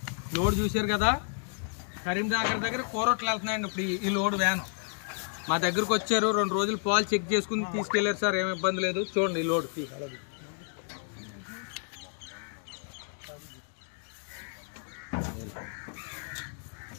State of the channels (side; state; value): right; silent; 57 dB below the other